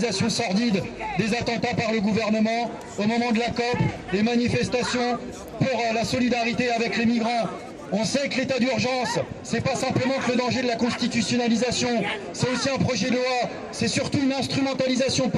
sordide des attentats par le gouvernement, au moment de la COP, les manifestations pour la solidarité avec les migrants. On sait que l'état d'urgence, c'est pas simplement que le danger de la constitutionnalisation, c'est aussi un projet de loi, c'est surtout une instrumentalisation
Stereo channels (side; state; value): both; identical; correlation 1.00